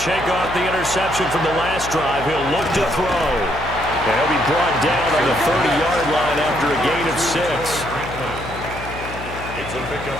off the interception from the last drive. He'll look to throw. And he'll be brought down on the 30-yard line after a gain of 6. It's a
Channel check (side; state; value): left; noise; hum, 11 dB below the sound